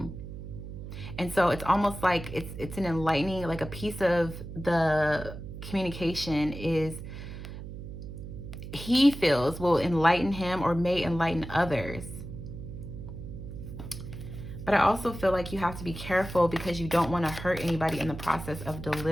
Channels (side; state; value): right; noise; hum, 10 dB below the sound